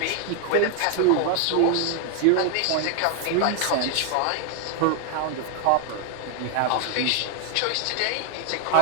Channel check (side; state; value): both; different; correlation 0.00